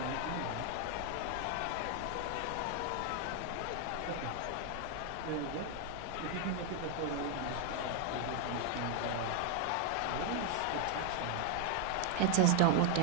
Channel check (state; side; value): different; both; correlation 0.00